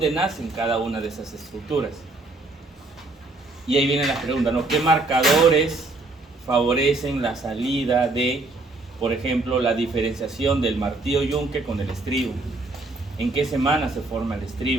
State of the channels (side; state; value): left; quieter; 3.2 dB